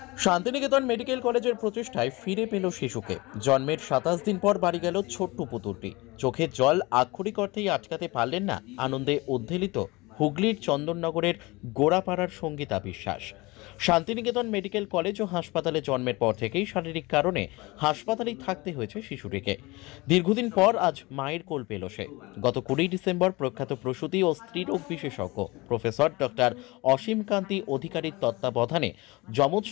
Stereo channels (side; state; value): right; quieter; 23.1 dB